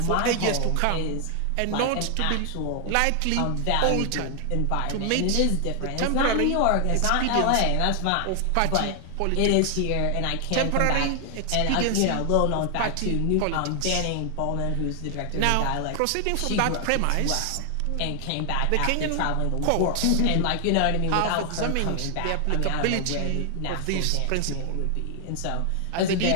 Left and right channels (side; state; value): both; different; correlation 0.00